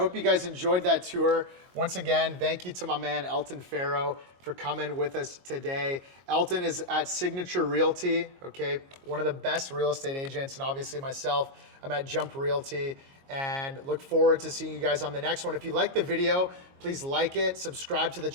you guys enjoyed that tour. Once again, thank you to my man Elton Fero for coming with us today. Elton is at Signature Realty, okay? One of the best real estate agents, and obviously myself, I'm at Jump Realty, and look forward to seeing you guys on the next one. If you like the video, please like it, subscribe to the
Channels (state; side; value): late; left; 22 ms